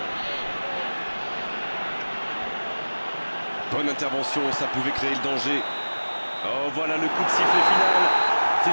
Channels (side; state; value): both; inverted; correlation -1.00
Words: Bonne intervention, ça pouvait créer le danger. Oh, voilà le coup de sifflet final.